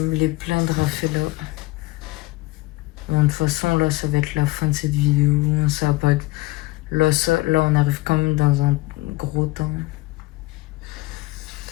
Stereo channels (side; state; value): right; quieter; 20.7 dB